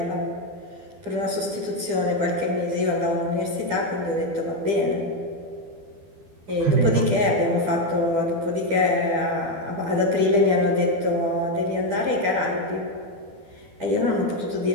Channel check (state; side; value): late; left; 12 ms